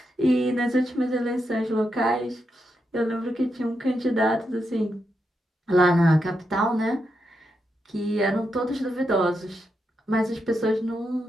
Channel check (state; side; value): normal; both; correlation 0.84